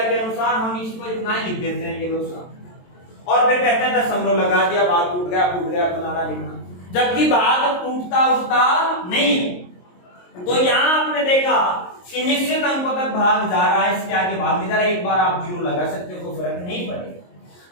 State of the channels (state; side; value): late; right; 22 ms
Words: के अनुसार हम इसको इतना ही लिख देते हैं, ये लोग। और फिर कहते हैं दशमलव लगा दिया, भाग टूट गया फलाना लिखना, जबकि भाग टूटता उठता नहीं है। तो यहां आपने देखा कि निश्चित अंकों तक भाग जा रहा है, इसके आगे भाग नहीं जा रहा। एक बार आप 0 लगा सकते हो, कोई फर्क नहीं पड़ेगा।